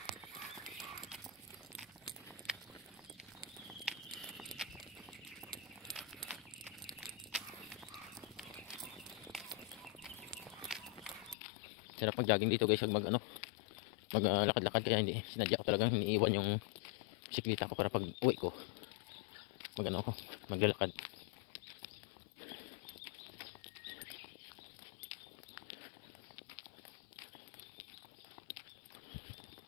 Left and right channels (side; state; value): right; drops out; at 11.4 s